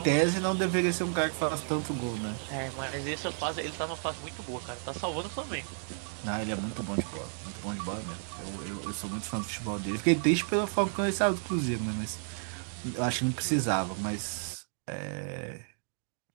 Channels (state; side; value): silent; left; digital silence